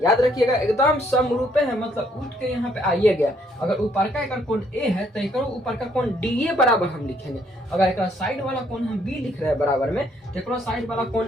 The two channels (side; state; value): both; normal; correlation 0.68